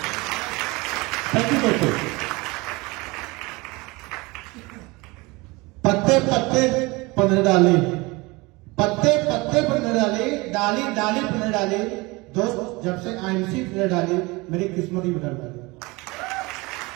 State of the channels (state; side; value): quieter; left; 24.2 dB